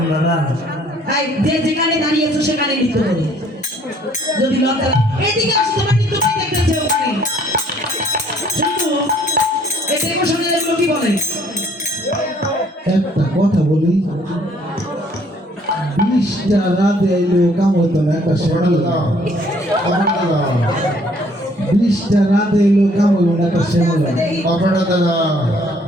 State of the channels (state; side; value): normal; both; correlation 0.61